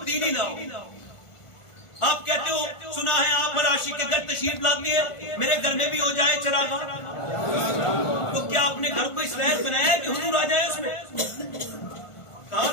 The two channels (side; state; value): right; late; 1.4 ms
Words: لاؤ. آپ کہتے ہو سنا ہے آپ ہر عاشق کے گھر تشریف لاتے ہیں, میرے گھر میں بھی ہو جائے چراغاں, تو کیا اپنے گھر کو اس لائق بنایا ہے کہ حضور آ جائے اس میں؟ کہاں